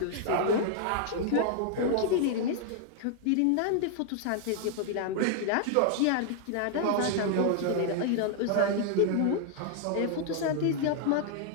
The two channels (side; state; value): both; different; correlation 0.00